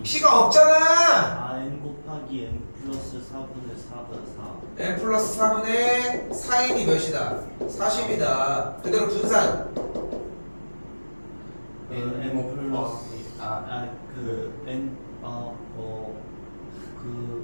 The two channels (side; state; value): both; inverted; correlation -1.00